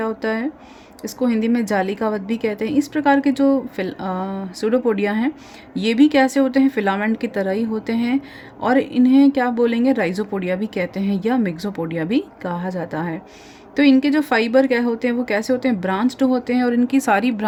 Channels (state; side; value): identical; both; correlation 1.00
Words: होता है, इसको हिंदी में जालिकावत भी कहते हैं। इस प्रकार के जो स्यूडोपोडिया हैं ये भी कैसे होते हैं, फिलामेंट की तरह ही होते हैं। और इन्हें क्या बोलेंगे, राइजोपोडिया भी कहते हैं या मिक्सोपोडिया भी कहा जाता है। तो इनके जो फाइबर क्या होते हैं वो कैसे होते हैं, ब्रांच्ड होते हैं। और इनकी सारी